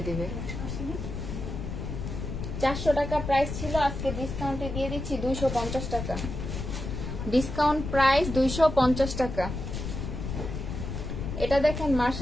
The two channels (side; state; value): left; noise; rumble, 5 dB below the sound